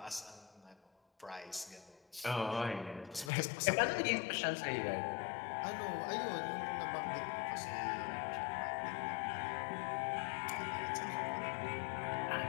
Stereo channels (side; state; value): right; drops out; at 3.3 s